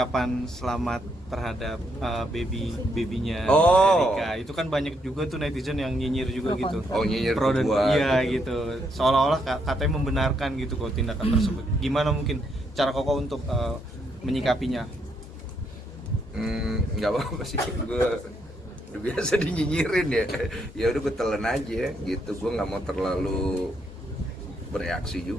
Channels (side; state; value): both; normal; correlation 0.76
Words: selamat terhadap babynya Erika? Itu kan banyak juga tuh netizen yang nyinyir juga gitu. Oh, nyinyir Pro dan gua, iya gitu. gitu. Seolah-olah katanya membenarkan gitu kok tindakan tersebut. Gimana mungkin cara Koko untuk menyikapinya? Nggak apa-apa sih, gue udah biasa dinyinyirin ya. Ya udah gue telan aja gitu, gue nggak mau terlalu bereaksi